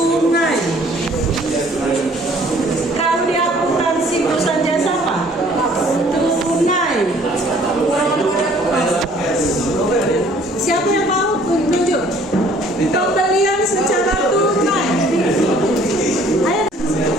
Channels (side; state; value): both; normal; correlation 0.57